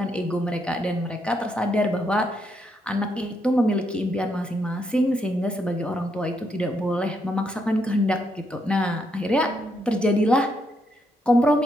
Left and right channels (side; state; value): both; normal; correlation 0.77